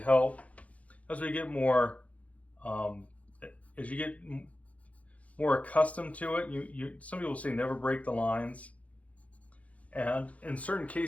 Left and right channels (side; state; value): right; late; 0.067 ms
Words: As we get more, as you get more accustomed to it, some people say never break the lines. And in certain